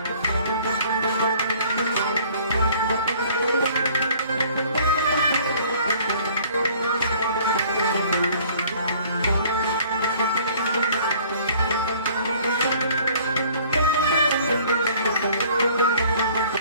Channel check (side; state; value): both; inverted; correlation -0.55